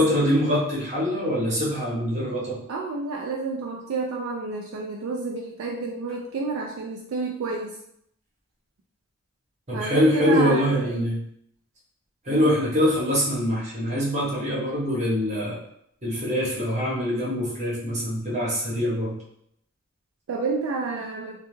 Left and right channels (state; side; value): normal; both; correlation 0.44